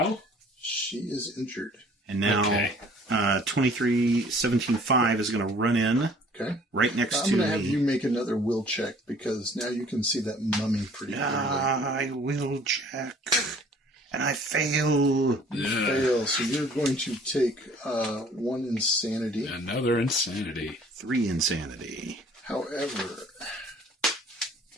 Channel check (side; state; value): both; normal; correlation 0.54